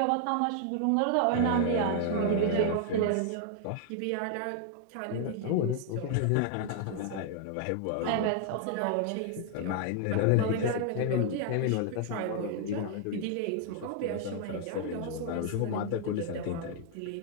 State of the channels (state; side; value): different; both; correlation 0.00